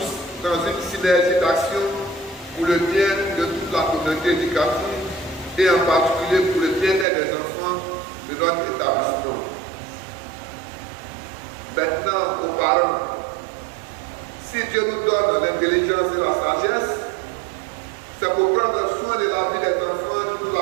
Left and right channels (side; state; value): left; drops out; at 7.1 s